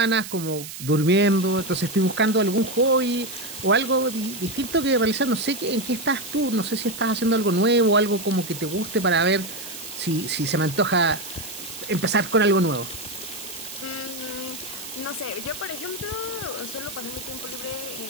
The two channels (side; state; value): right; noise; hiss, 11 dB below the sound